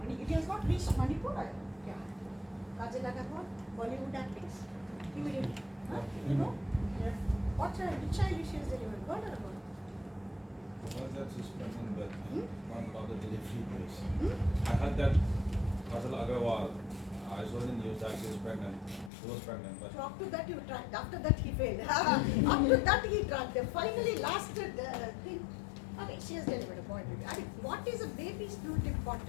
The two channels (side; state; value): right; drops out; at 19.1 s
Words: it has not reached Manipur. Yeah. Kajal Agarwal, Bollywood actress. Immediately. Huh? You know? Yeah. What child? Which child she has delivered? Boy or a girl? Was that suspended that one of the delivery place? Hmm? I heard that Kajal Agarwal, I saw in the news that she was pregnant. She was pregnant, but So up to that you tried. After that he failed. Up to that he tried. They finally lasted thing. Okay, she has delivered a boy baby. I mean, what is a baby is not